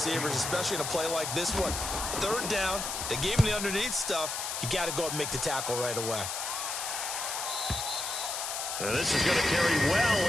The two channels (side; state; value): left; noise; hiss, 3 dB below the sound